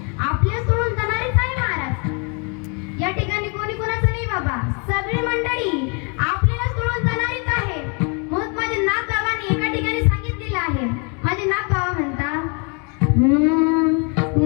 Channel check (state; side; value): quieter; right; 35.4 dB